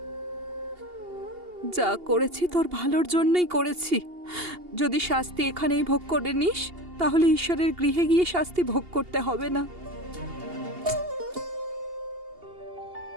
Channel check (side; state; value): left; late; 2.8 ms